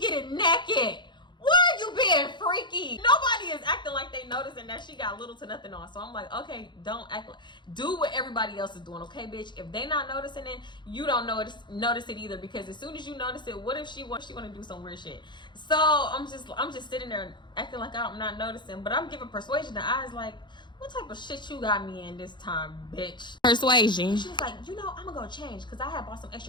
naked? Where are you being freaky. Nobody is acting like they noticing that she got little to nothing on. So I'm like, okay, don't act like, do what everybody else is doing, okay, bitch? If they not noticing it, you don't notice it either, because as soon as you notice it, what if she want to do some weird shit? So I'm just sitting there acting like I'm not noticing, but I'm giving Persuasion the eyes like, what type of shit you got me in this time, bitch? Persuasion. She was like, I'm gonna go change because I had bought some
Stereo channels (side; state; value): right; late; 0.22 ms